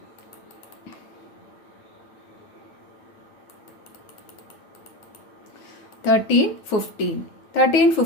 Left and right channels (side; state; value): right; late; 9.5 ms